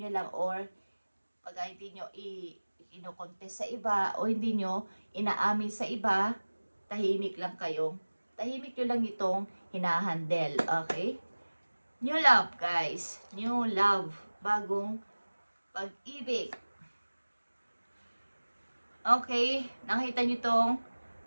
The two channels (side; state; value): both; inverted; correlation -1.00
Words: lang, or pag hindi nyo ino-contest sa iba o hindi nyo inaamin sa iba, tahimik lang kayo. Tahimik nyo lang itong hinahandle. Okay? New love guys. New love. Bagong pag-ibig. Okay, nakita nyo itong